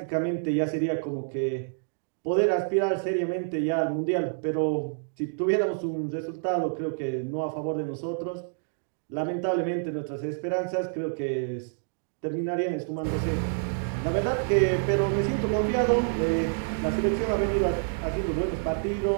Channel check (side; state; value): left; silent; digital silence